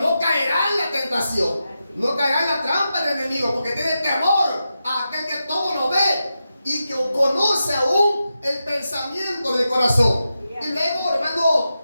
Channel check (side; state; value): both; inverted; correlation -0.89